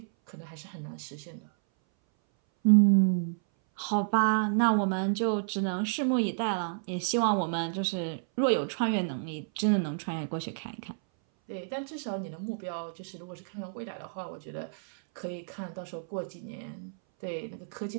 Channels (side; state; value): left; silent; 58 dB below the other